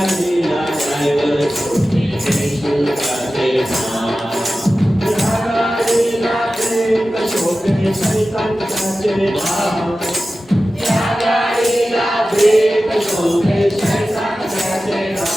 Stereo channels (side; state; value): both; normal; correlation 0.94